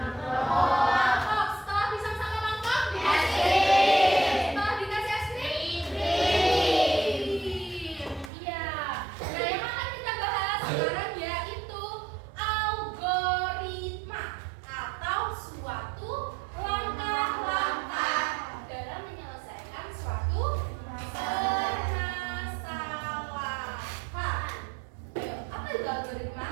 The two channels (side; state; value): left; drops out; at 8.3 s